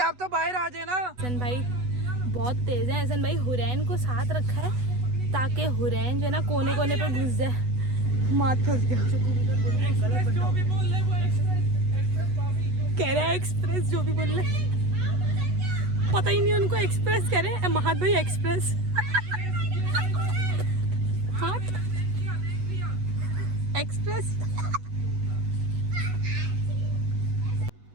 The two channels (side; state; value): left; late; 8.1 ms